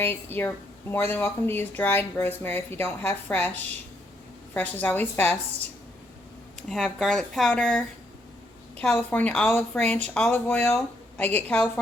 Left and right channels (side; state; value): both; normal; correlation 0.74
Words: You're more than welcome to use dried rosemary if you don't have fresh. Fresh is always best. I have garlic powder, California olive ranch olive oil. I get